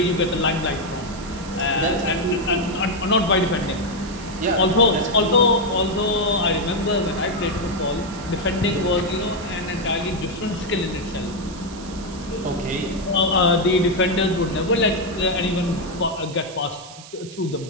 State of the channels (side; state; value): right; noise; hiss, 17 dB below the sound